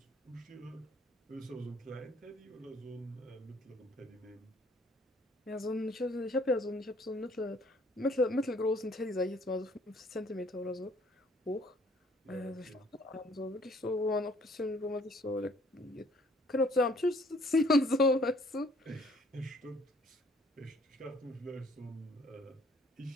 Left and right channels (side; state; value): both; normal; correlation 0.60